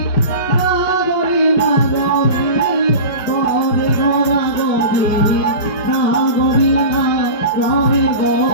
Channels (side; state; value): right; late; 5.2 ms